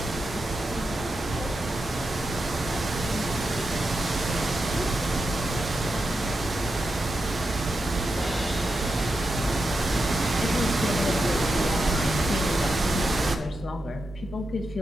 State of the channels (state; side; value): normal; both; correlation 0.88